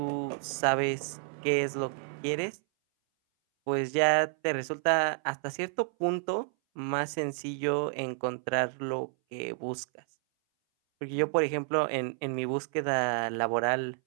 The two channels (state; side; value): silent; left; 58 dB below the other